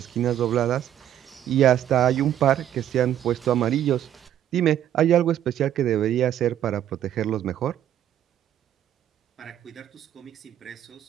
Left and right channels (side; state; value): left; quieter; 11.1 dB